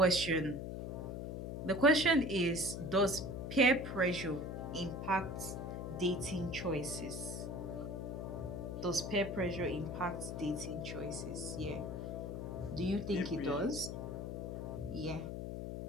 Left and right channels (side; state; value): left; noise; hum, 5 dB below the sound